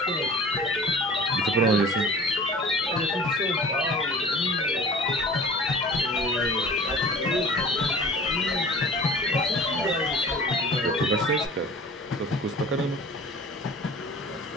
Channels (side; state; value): both; normal; correlation 0.43